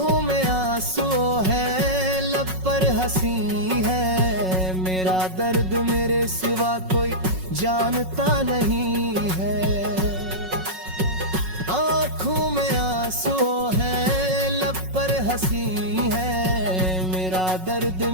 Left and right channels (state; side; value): late; left; 5.4 ms